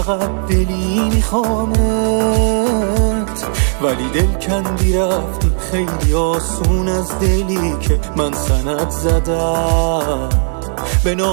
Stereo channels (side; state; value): left; silent; 58 dB below the other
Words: دلی میخوامت، ولی دل کندی رفتی خیلی آسون از دلی که من سند زدم به